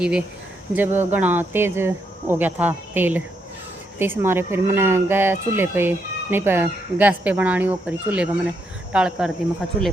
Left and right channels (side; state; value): both; normal; correlation 0.78